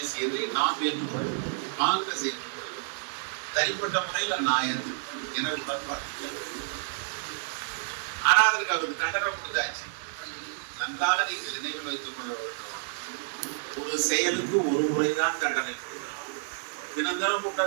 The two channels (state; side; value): silent; left; digital silence